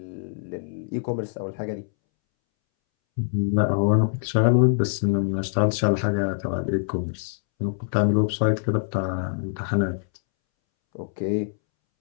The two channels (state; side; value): silent; right; 62 dB below the other